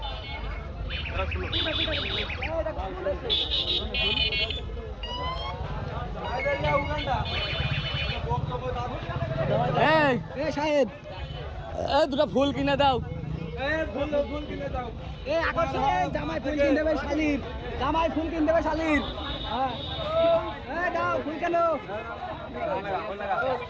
এই শাহেদ এই দুটো ফুল কিনে দাও ফুল কিনে দাও এ আকর্ষণে জামাই ফুল কিনে দেবে শালির জামাই ফুল কিনে দেবে শালির হ্যাঁ এই দাও ফুল কেন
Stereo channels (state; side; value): identical; both; correlation 1.00